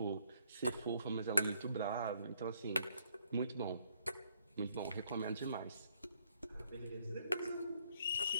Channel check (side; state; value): both; inverted; correlation -0.69